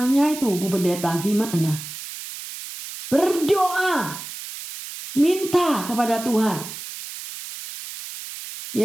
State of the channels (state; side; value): noise; right; hiss, 11 dB below the sound